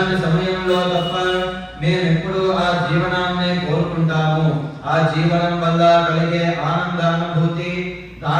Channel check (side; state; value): both; identical; correlation 1.00